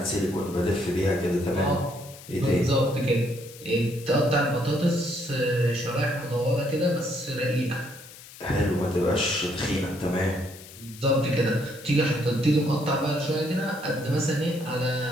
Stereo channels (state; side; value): noise; left; hiss, 18 dB below the sound